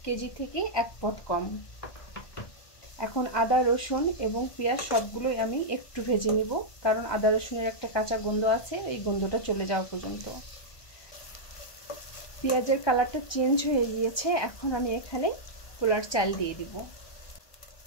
কেজি থেকে 1 পট কম। এখন আদা রসুন এবং পেঁয়াজ সবগুলোই আমি একটু ভেজে নিব, কারণ আদা রসুনের একটা কাঁচা গন্ধ আছে, এই গন্ধটা চলে যাওয়া পর্যন্ত। পেঁয়াজের কালারটা চেঞ্জ হয়ে গিয়েছে। এখন আমি এখানে পোলার চাল দিয়ে দিব।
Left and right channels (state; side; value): late; right; 1.2 ms